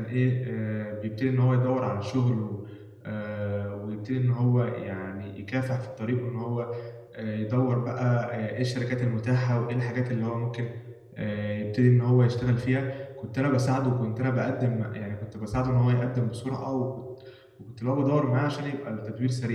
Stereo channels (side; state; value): both; identical; correlation 1.00